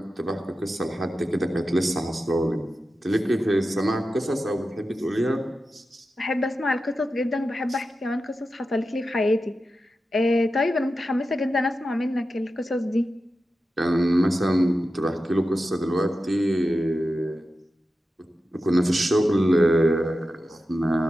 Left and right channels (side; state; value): both; normal; correlation 0.91